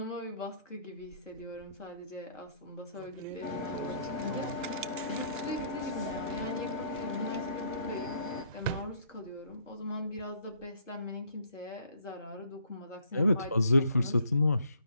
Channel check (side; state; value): both; inverted; correlation -0.63